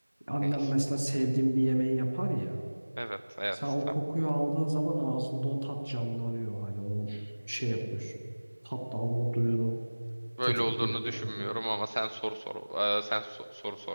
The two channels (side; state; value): both; inverted; correlation -1.00